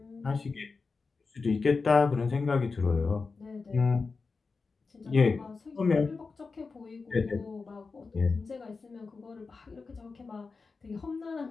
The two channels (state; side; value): quieter; right; 4.4 dB